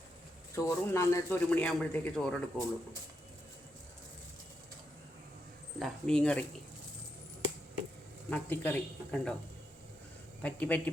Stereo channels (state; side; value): normal; both; correlation 0.82